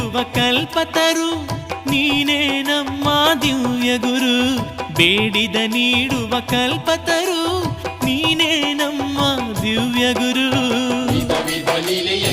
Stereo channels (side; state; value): both; identical; correlation 1.00